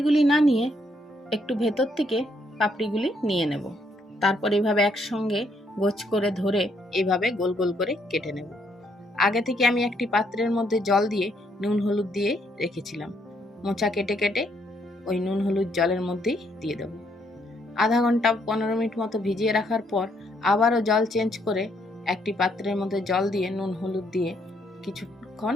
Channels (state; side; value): normal; both; correlation 0.72